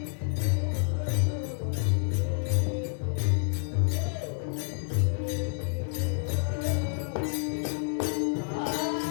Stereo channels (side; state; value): right; silent; 59 dB below the other